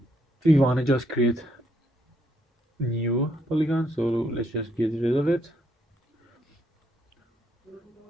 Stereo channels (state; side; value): normal; both; correlation 0.74